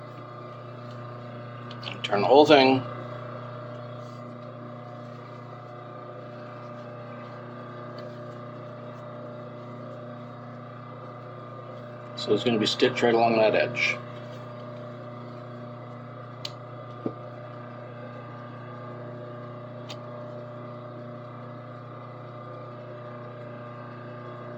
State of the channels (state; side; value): identical; both; correlation 1.00